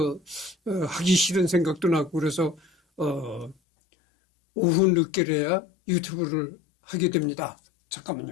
하기 싫은 생각도 나고 그래서 오후 늦게라야 유튜브를 하게 됩니다.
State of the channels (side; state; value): right; drops out; at 3.6 s